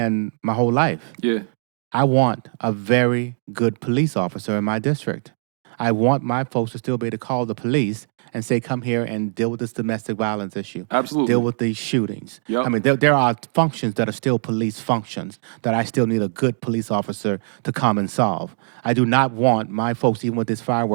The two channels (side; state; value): left; silent; digital silence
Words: my whole life. Yeah. I want a very good police officer in my district. I want my folks to still be able to call the police and say, come here and deal with this domestic violence issue. Absolutely. Deal with these shootings. Yep. I mean, there are functions that are still police functions that I still need a good police officer to come and solve. I do not want my folks, even with this